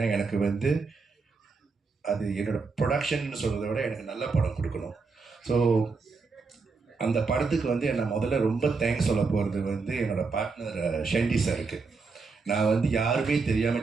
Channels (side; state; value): left; quieter; 4.5 dB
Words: எனக்கு வந்து அது என்னோடய ப்ரொடக்ஷன் சொல்கிறத விட எனக்கு நல்ல படம் கொடுக்கணும். ஸோ அந்த படத்துக்கு வந்து நான் முதல்ல ரொம்ப தேங்க்ஸ் சொல்ல போகிறது வந்து என்னோடய பார்ட்னர் ஷெண்டி சாருக்கு. நான் வந்து யாருமே